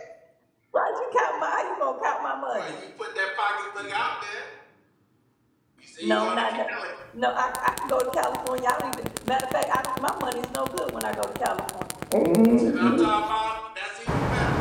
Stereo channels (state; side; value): identical; both; correlation 1.00